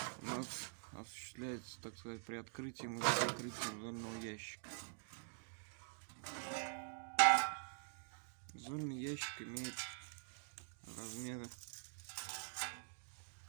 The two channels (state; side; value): silent; left; digital silence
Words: у нас осуществляется, так сказать, при открытии и закрытии зольного ящика. Зольный ящик имеет размеры